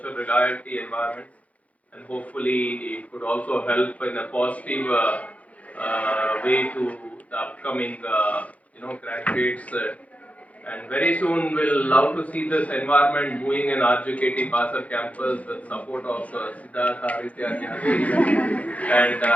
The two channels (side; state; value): right; late; 0.067 ms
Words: reality environment, and hopefully it could also help in a positive way to the upcoming graduates. And very soon we'll love to see this environment moving in RJKT Basar campus with support of Siddhartha, Aditya, and Jagiri.